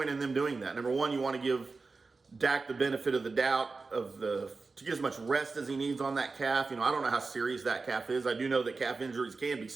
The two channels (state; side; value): quieter; left; 4.1 dB